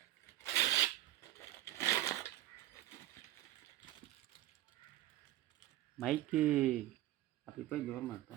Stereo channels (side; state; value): left; quieter; 14.6 dB